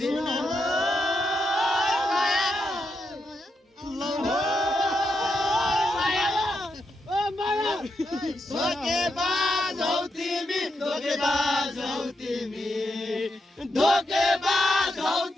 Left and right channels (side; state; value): both; normal; correlation 0.83